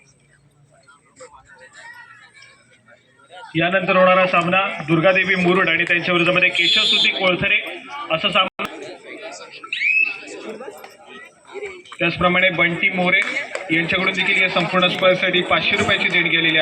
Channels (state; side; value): identical; both; correlation 1.00